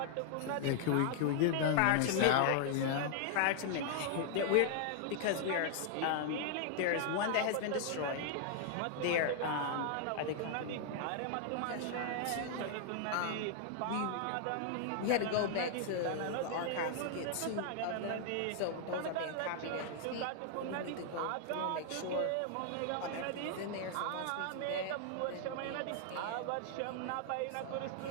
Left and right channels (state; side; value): different; both; correlation 0.00